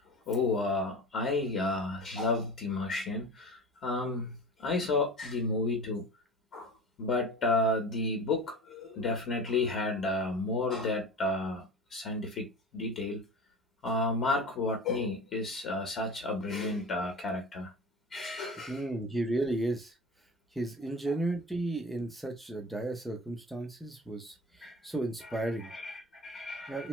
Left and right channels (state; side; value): normal; both; correlation 0.34